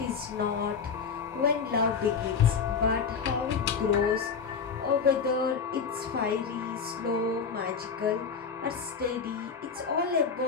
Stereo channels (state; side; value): quieter; right; 5.9 dB